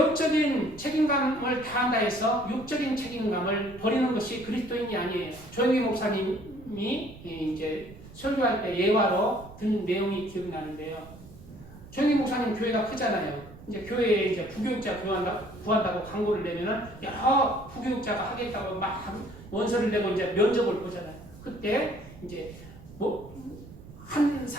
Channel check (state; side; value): noise; right; rumble, 18 dB below the sound